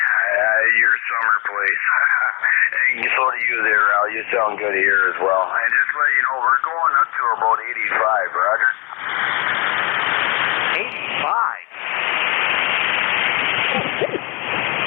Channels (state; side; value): quieter; right; 27.4 dB